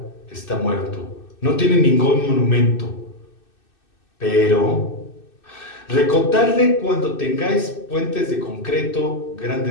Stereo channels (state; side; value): late; right; 2.6 ms